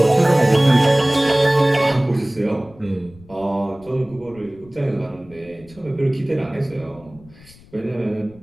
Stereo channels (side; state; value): left; noise; rumble, 24 dB below the sound